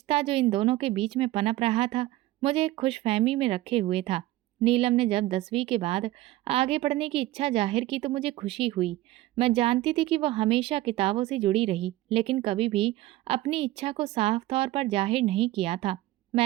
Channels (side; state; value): left; quieter; 16.6 dB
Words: जो इन दोनों के बीच में पनप रहा था, मुझे एक खुशफहमी में रखे हुए था। नीलम ने जब 10वीं के बाद आगे पढ़ने की इच्छा जाहिर की तो मुझे खुशी हुई। मैं जानती थी कि वह हमेशा किताबों से जुड़ी रही, लेकिन कभी भी अपनी इच्छा को साफ तौर पर जाहिर नहीं किया था।